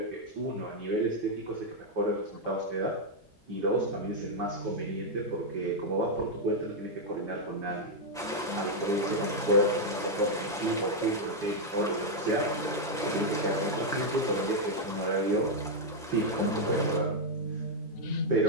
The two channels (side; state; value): both; normal; correlation 0.00